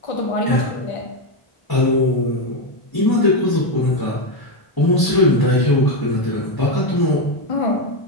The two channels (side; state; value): right; late; 1.0 ms